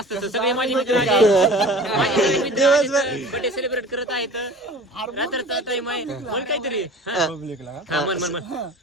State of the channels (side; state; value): both; normal; correlation 0.42